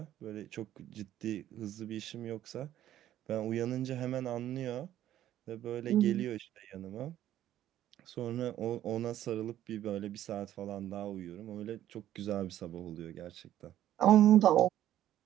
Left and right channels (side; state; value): left; quieter; 12.3 dB